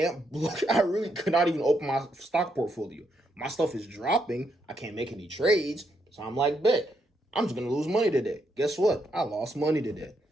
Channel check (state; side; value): normal; both; correlation 0.78